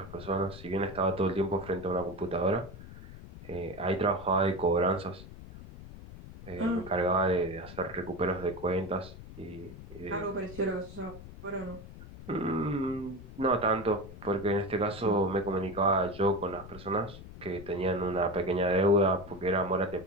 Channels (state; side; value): noise; left; rumble, 15 dB below the sound